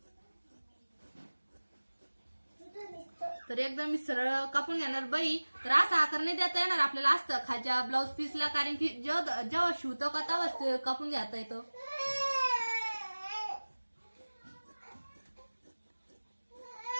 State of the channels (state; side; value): inverted; both; correlation -1.00